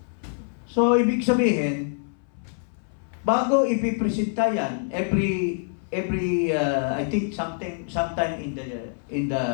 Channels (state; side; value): silent; right; 61 dB below the other